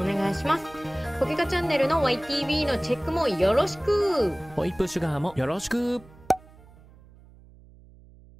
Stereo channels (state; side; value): noise; right; hum, 24 dB below the sound